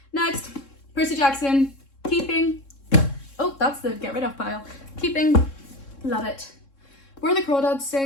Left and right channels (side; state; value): right; late; 3.7 ms